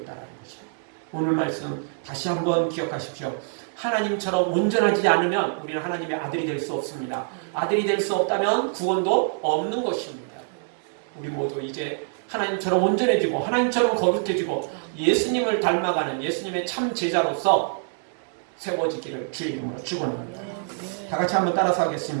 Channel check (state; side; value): silent; left; digital silence